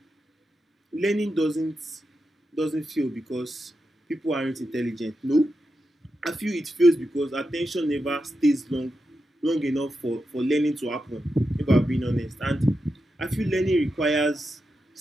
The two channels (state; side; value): normal; both; correlation 0.88